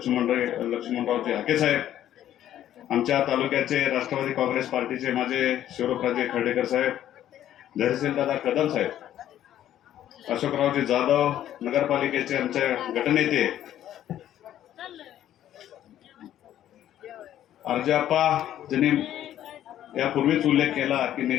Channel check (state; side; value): quieter; right; 11.7 dB